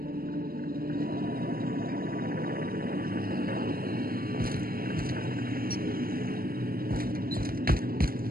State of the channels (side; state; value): left; late; 0.43 ms